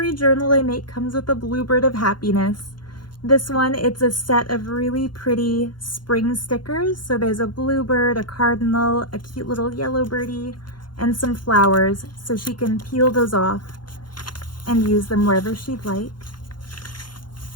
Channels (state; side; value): late; right; 0.71 ms